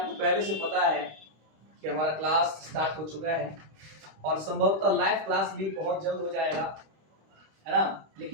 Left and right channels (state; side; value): late; left; 26 ms